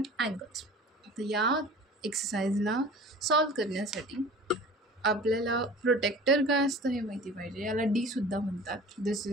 angle. तर या एक्सरसाइजला solve करण्यासाठी आपल्याला protector काय असतं हे माहिती पाहिजे. याला डी सुद्धा म्हणतात. दिस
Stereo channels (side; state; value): both; normal; correlation 0.42